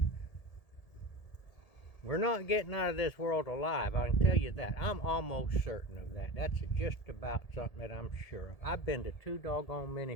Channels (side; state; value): right; late; 1.8 ms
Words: We're not getting out of this world alive, I can tell you that. I'm almost certain of that. That's just about something that I'm sure of. I've been to 2 doggone